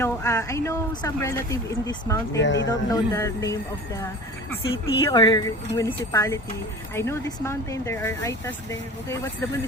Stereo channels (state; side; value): normal; both; correlation 0.38